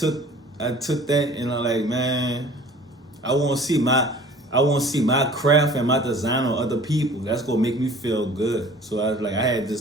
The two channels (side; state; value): both; normal; correlation 0.47